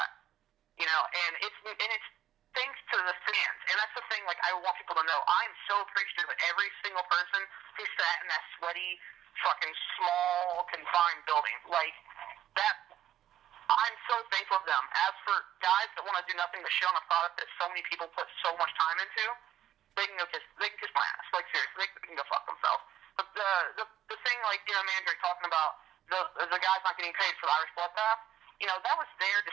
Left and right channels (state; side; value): quieter; left; 11.6 dB